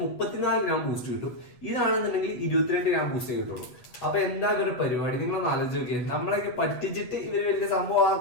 34 ഗ്രാം ബൂസ്റ്റ് കിട്ടും. ഇതാണെന്നുണ്ടെങ്കിൽ 22 ഗ്രാം ബൂസ്റ്റേ കിട്ടുള്ളൂ. അപ്പൊ എന്താ ഇവരുടെ പരിപാടി? നിങ്ങളൊന്ന് ആലോചിച്ച് നോക്കിയാൽ, നമ്മളൊക്കെ പറ്റിച്ചിട്ട് ഇവര് വലിയ സംഭവം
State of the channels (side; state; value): right; late; 8.1 ms